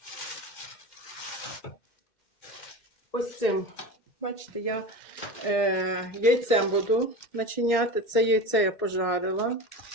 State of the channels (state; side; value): late; right; 1.6 ms